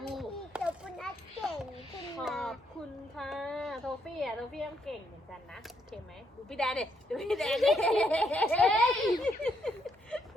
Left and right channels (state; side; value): normal; both; correlation 0.74